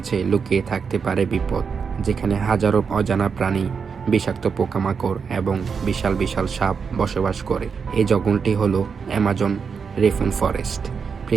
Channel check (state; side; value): quieter; left; 5.9 dB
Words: লুকিয়ে থাকতে পারে বিপদ, যেখানে হাজারো অজানা প্রাণী, বিষাক্ত পোকামাকড় এবং বিশাল বিশাল সাপ বসবাস করে। এই জঙ্গলটি হলো অ্যামাজন রেইন ফরেস্ট,